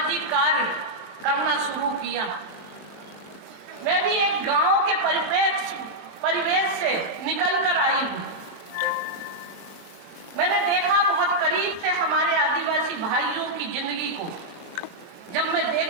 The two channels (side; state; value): left; late; 23 ms